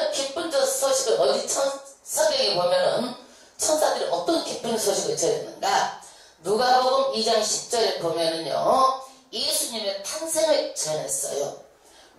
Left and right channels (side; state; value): both; identical; correlation 1.00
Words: 기쁜 소식을 어디 성경에 보면은 천사들이 어떤 기쁜 소식을 전했는가? 누가복음 2장 10절에 보면은요, 예수님의 탄생을 전했어요.